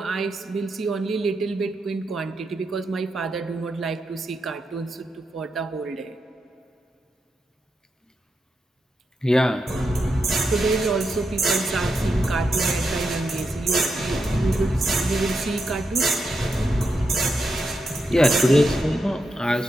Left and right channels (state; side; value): normal; both; correlation 0.85